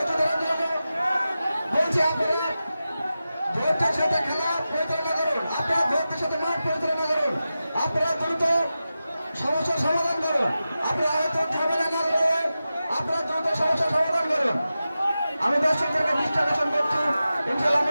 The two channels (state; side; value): inverted; both; correlation -0.93